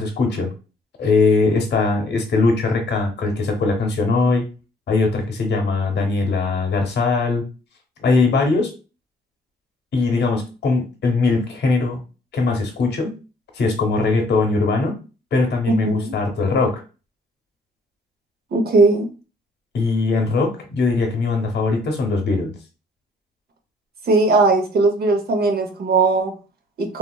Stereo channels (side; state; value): both; normal; correlation 0.60